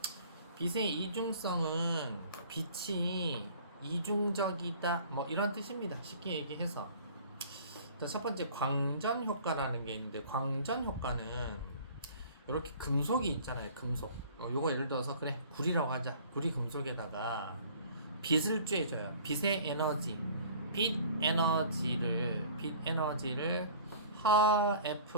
빛의 이중성은 빛이 이중적이다 뭐 이런 뜻입니다. 쉽게 얘기해서. 자, 첫 번째 광전 효과라는 게 있는데, 광전 효과는 이렇게 금속이 있잖아요. 금속. 요거 예를 들어서 그래 구리라고 하자. 구리 금속에다가 빛을 쬐줘요. 빛의 에너지, 빛 에너지를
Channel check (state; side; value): inverted; both; correlation -0.48